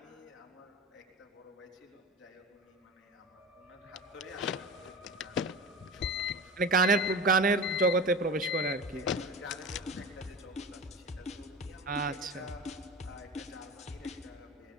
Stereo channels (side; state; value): both; normal; correlation 0.31